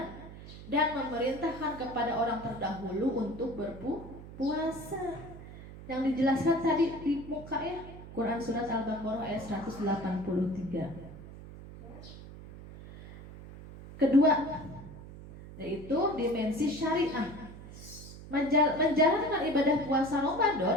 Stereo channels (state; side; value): noise; right; hum, 15 dB below the sound